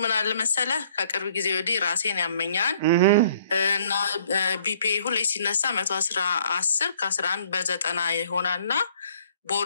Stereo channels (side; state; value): both; inverted; correlation -0.61